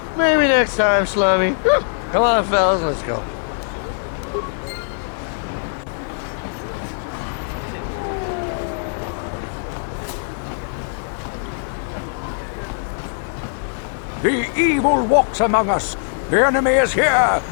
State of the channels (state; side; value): silent; right; digital silence